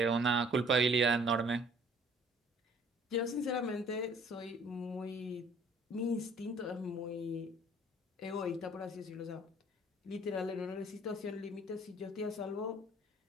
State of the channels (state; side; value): normal; both; correlation 0.56